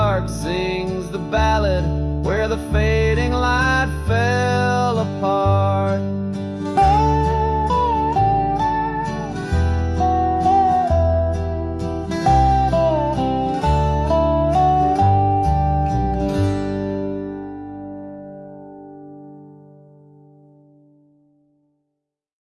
sings the ballad where the fading light fell apart.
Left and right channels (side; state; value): both; identical; correlation 1.00